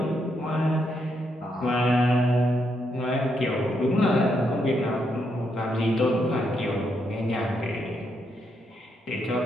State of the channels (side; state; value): both; normal; correlation 0.79